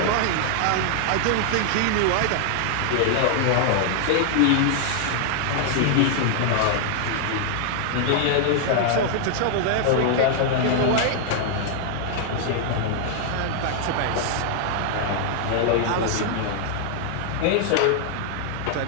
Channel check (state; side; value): different; both; correlation -0.01